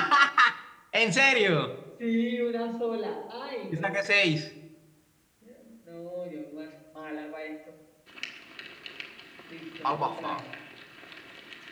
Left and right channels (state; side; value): identical; both; correlation 1.00